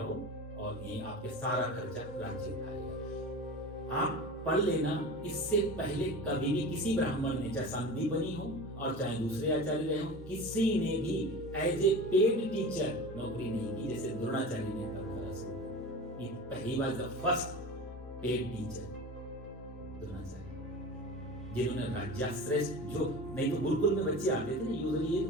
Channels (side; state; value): both; normal; correlation 0.32